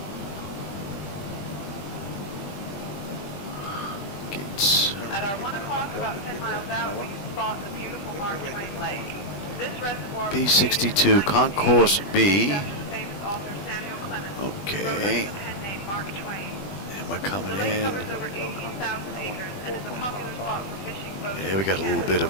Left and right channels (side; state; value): right; late; 20 ms